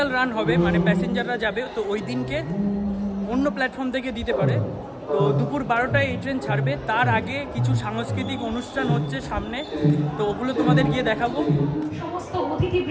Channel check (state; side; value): identical; both; correlation 1.00